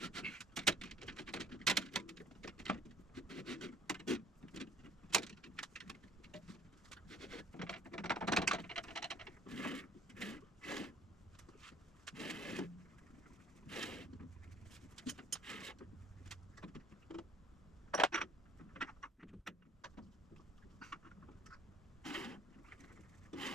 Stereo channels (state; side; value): normal; both; correlation 0.56